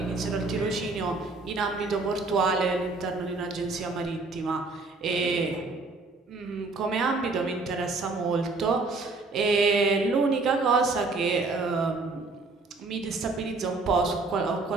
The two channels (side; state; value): left; quieter; 3.6 dB